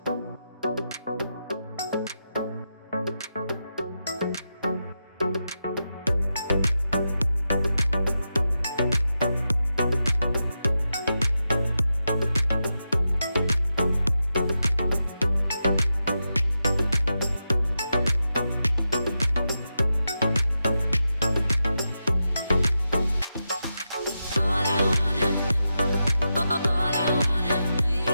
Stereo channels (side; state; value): both; inverted; correlation -0.88